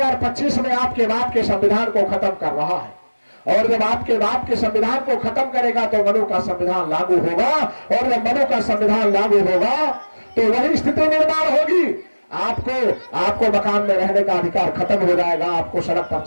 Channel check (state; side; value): inverted; both; correlation -1.00